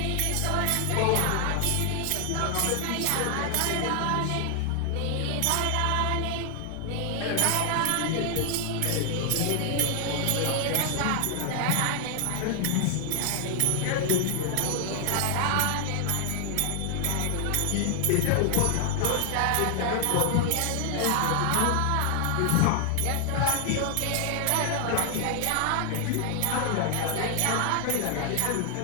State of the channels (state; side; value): different; both; correlation 0.00